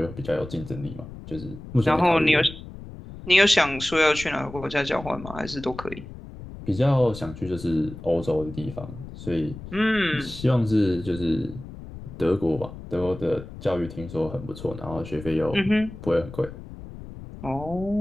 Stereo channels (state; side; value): noise; left; rumble, 13 dB below the sound